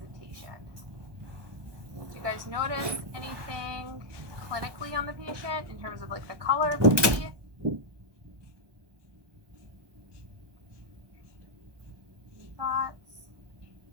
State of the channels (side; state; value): left; late; 1.2 ms